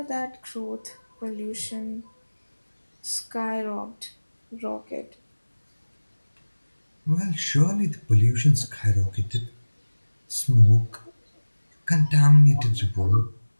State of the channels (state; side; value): inverted; both; correlation -1.00